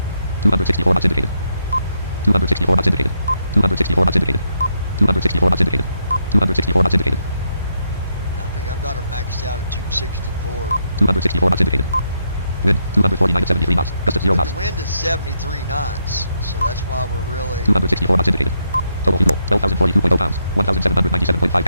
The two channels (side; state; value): both; inverted; correlation -0.79